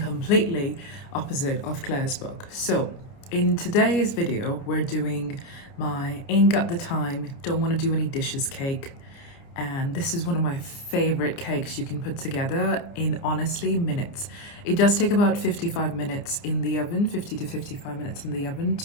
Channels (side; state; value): right; late; 29 ms